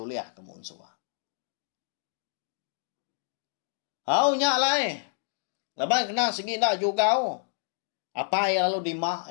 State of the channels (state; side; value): silent; right; digital silence